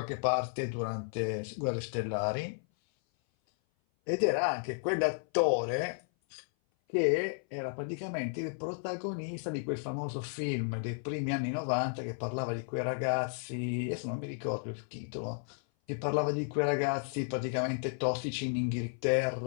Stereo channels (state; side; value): silent; right; 56 dB below the other